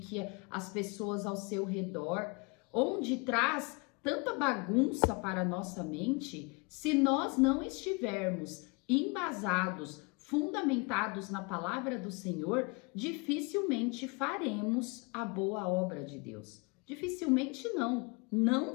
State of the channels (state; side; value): quieter; right; 29.9 dB